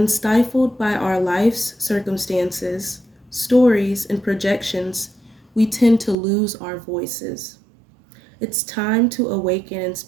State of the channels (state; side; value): drops out; left; at 6.2 s